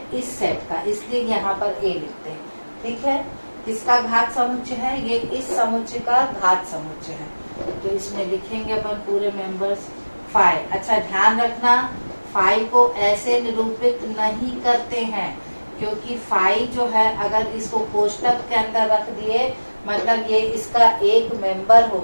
इस सेट का, इसलिए यहाँ पर A लिखते हैं। ठीक है, किसका घात समुच्चय है? ये इस समुच्चय का घात समुच्चय है। तो इसमें लिखेंगे अपन पूरे मेंबर्स 5। अच्छा ध्यान रखना, 5 को ऐसे निरूपित नहीं करते हैं, क्योंकि 5 जो है अगर इसको कोष्टक के अंदर रख दिए मतलब ये इसका एक मेंबर हो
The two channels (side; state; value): both; inverted; correlation -1.00